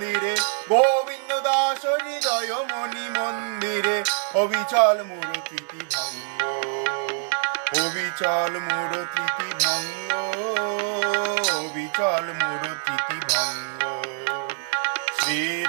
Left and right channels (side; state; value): left; silent; 62 dB below the other